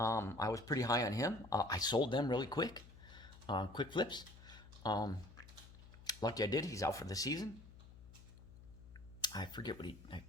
was pretty high on him. I sold them really quick. Quick flips. Lucky I did. He's out for the season. I forget what I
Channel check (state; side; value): noise; left; hum, 18 dB below the sound